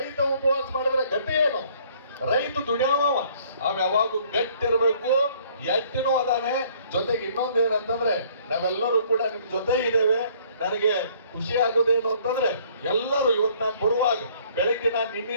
ಉಪವಾಸ ಮಾಡಿದ್ರೆ ಗಟ್ಟಿ ಏನು? ರೈತ ದುಡಿಯವ, ಅವ್ ಯಾವಾಗೂ ಗಟ್ಟಿರ್ಬೇಕು, ಎಟ್ಟಿನೂ ಅದಾನೆ. ಜೊತೆಗೆ ಇನ್ನೊಂದು ಏನಂತಂದ್ರೆ ನಾವೆಲ್ಲರೂ ಕೂಡ ನಿಮ್ ಜೊತೆ ಇದ್ದೇವೆ. ನನಗೆ ಖುಷಿ ಆಗೋದೇನು ಅಂತಂದ್ರೆ ಎಲ್ಲರೂ ಇವತ್ತು ನಾನು ಬರುವಾಗ ಬೆಳಗ್ಗೆ ನಾನು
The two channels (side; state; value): both; inverted; correlation -0.59